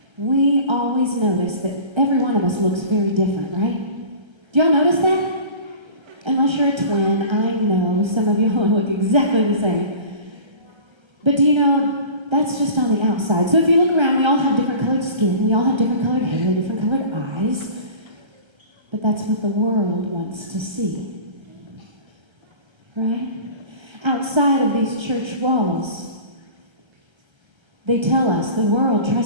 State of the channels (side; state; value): left; late; 1.3 ms